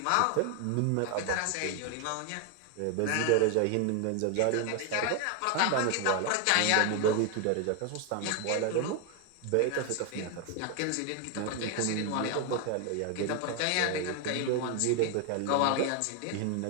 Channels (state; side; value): different; both; correlation 0.01